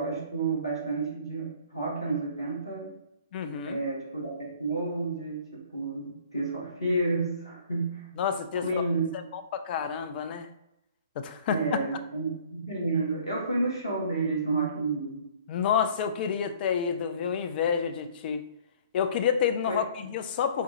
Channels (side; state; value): both; inverted; correlation -0.52